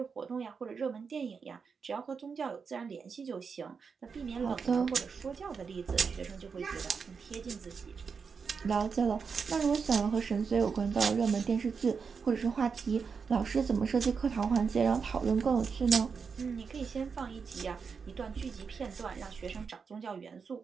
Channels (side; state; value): left; quieter; 5.7 dB